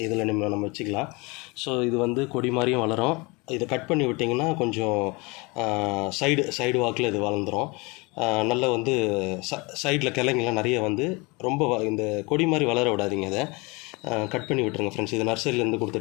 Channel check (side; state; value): right; quieter; 26.7 dB